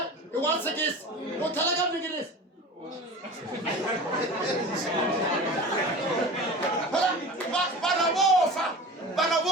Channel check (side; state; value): both; normal; correlation 0.35